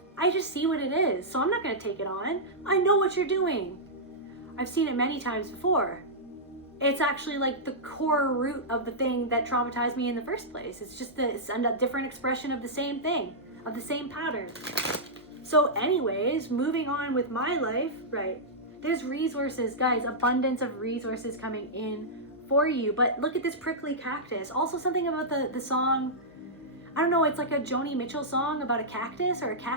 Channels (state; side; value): normal; both; correlation -0.11